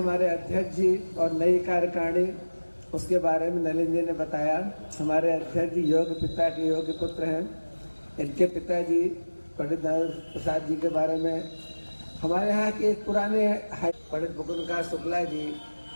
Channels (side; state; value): both; inverted; correlation -1.00